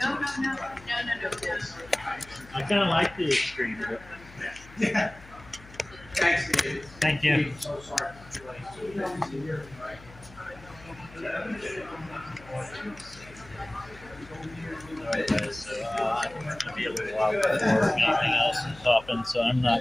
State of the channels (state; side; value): noise; left; hum, 20 dB below the sound